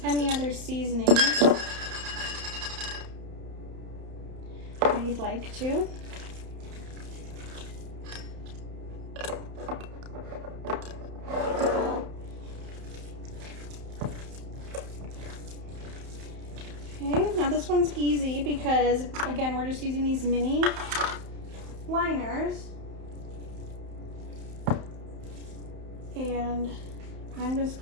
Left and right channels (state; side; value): late; left; 31 ms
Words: any other seasonings that you'd like to. Okay, now this one's easy because, again, we're just using these mini liners. And I'm just